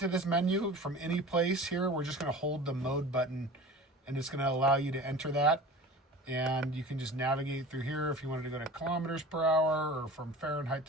this menu from any place here, we're just going to hold the mode button, and it's going to allow you to enter that. And you can just navigate through here if you wanted to go to kilometers per hour or from Fahrenheit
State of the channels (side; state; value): both; normal; correlation 0.38